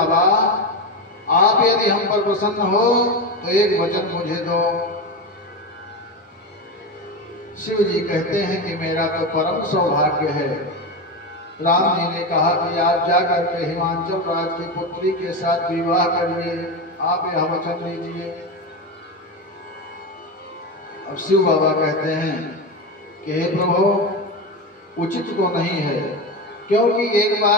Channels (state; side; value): normal; both; correlation 0.18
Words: आप यदि हम पर प्रसन्न हो तो एक वचन मुझे दो। शिव जी कहते हैं कि मेरा तो परम सौभाग्य है। राम जी ने कहा कि आप जाकर के हिमांचल राज की पुत्री के साथ विवाह करिए, आप यह वचन दीजिए। अब शिव बाबा कहते हैं कि हे प्रभु, उचित तो नहीं है, क्योंकि एक